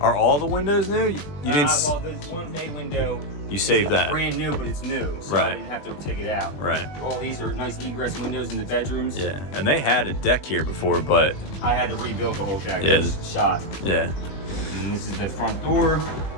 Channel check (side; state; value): right; late; 20 ms